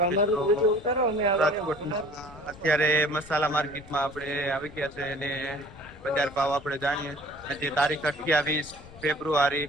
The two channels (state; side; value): noise; left; rumble, 19 dB below the sound